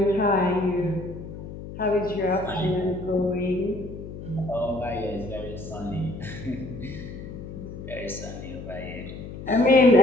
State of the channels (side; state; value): left; noise; hum, 11 dB below the sound